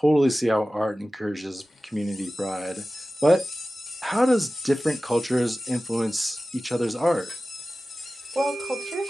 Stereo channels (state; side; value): normal; both; correlation 0.96